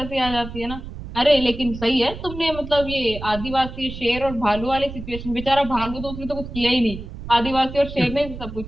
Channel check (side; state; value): right; noise; rumble, 10 dB below the sound